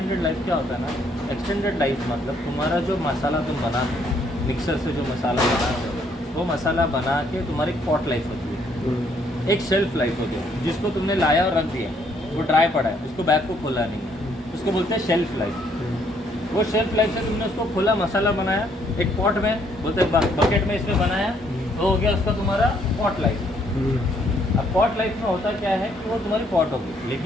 लाइफ क्या होता है ना, एक्सटेंडेड लाइफ मतलब तुम्हारा जो मसाला तुम बनाते हो मिक्सर से, जो मसाला बनाते हो वो मसाला बना के तुम्हारी एक पॉट लाइफ होती है, एक शेल्फ लाइफ होती है, जिसको तुमने लाया और रख दिया, वो ड्राई पड़ा है, उसको बैग को खोला नहीं है, उसको बोलते हैं शेल्फ लाइफ। वो शेल्फ लाइफ से तुमने उसको खोला, मसाला बनाया, एक पॉट में बोलते हैं बकेट में इसमें बनाया, तो हो गया उसका तुम्हारा पॉट लाइफ। अब पॉट लाइफ में होता क्या है कि वो तुम्हारी पॉट होगी,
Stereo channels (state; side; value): normal; both; correlation 0.68